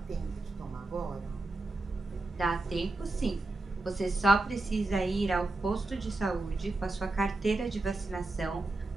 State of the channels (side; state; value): left; quieter; 3.0 dB